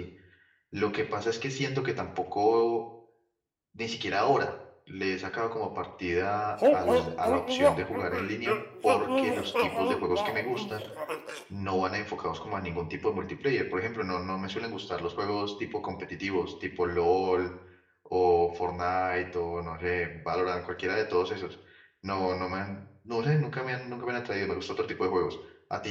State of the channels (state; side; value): identical; both; correlation 1.00